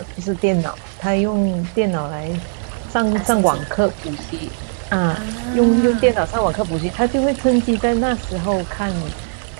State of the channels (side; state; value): left; silent; digital silence